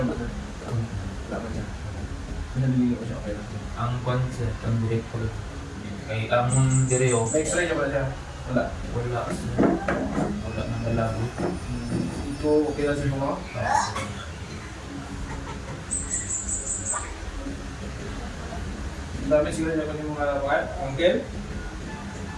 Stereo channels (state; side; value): identical; both; correlation 1.00